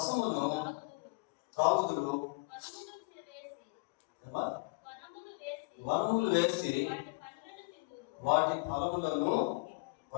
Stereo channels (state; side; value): quieter; right; 29.1 dB